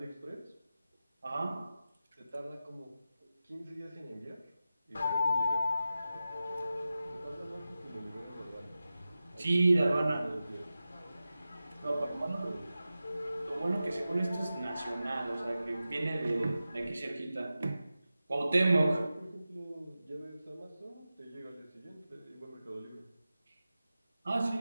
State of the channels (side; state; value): both; inverted; correlation -0.94